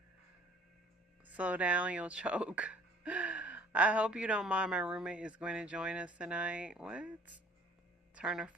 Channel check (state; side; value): normal; both; correlation 0.54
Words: Slow down, you'll choke. I hope you don't mind. My roommate is going to join us tonight. What? Turn her